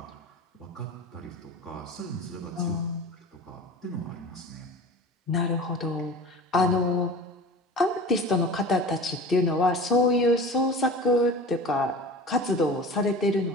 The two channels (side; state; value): both; normal; correlation 0.36